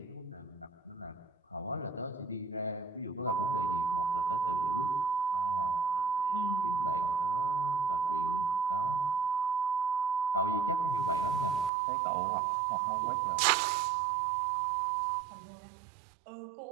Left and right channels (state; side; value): drops out; left; at 11.7 s